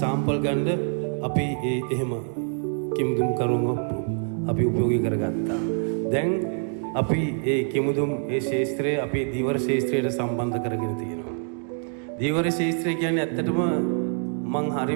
සාම්පල් ගන්න අපි ඒ එහෙම කිමුදුම් කරුම අපි උපයෝගී කරගත්තා. දැන් අපි ඒ කිමුදුම් ඒ ශාස්ත්‍රය අපේ දීවර ශාස්ත්‍රයට සම්බන්ධ කරගෙන තියෙනවා. දීවර ශාස්ත්‍රය කියන්නේ ඇත්තටම මං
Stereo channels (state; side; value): silent; left; 57 dB below the other